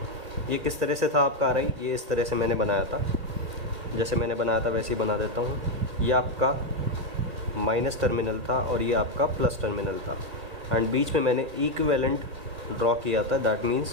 ये किस तरह से था आपका आ रही, ये इस तरह से मैंने बनाया था, जैसे मैंने बनाया था वैसे ही बना देता हूँ। ये आपका माइनस टर्मिनल था और ये आपका प्लस टर्मिनल था, एंड बीच में मैंने इक्विवेलेंट ड्रॉ किया था। दैट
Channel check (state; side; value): late; left; 1.7 ms